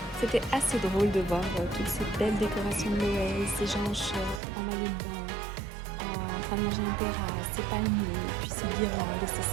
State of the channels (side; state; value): left; drops out; at 4.4 s